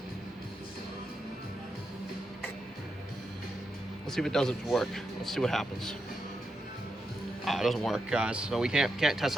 Let's see if it doesn't work. Let's see what happens. It doesn't work, guys. So we can't test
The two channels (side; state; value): both; normal; correlation 0.85